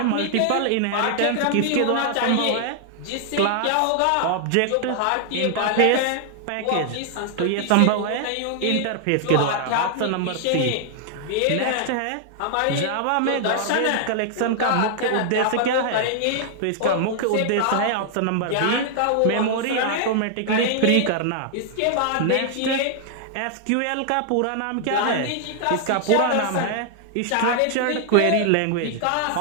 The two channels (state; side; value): different; both; correlation 0.00